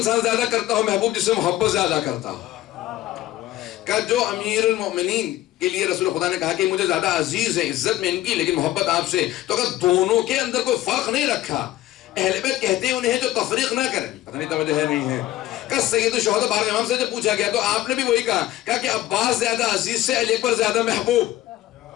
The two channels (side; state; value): right; quieter; 15.0 dB